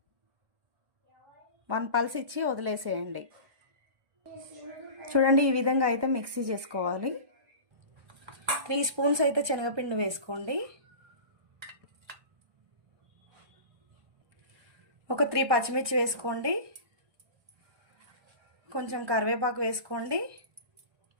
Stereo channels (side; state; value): left; late; 1.2 ms